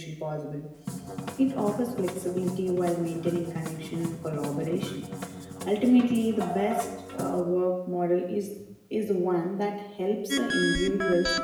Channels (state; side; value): identical; both; correlation 1.00